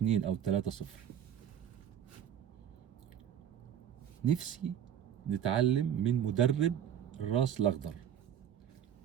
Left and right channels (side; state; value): left; quieter; 9.5 dB